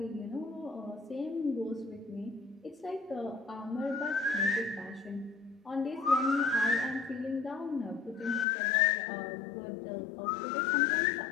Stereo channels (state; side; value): drops out; right; at 8.5 s